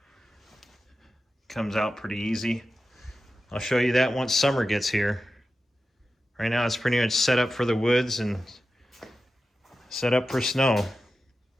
Comes out pretty easy. I'll show you that once summer gets here. Right now it's pretty much set up for the woods and set up for snow.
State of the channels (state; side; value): normal; both; correlation 0.92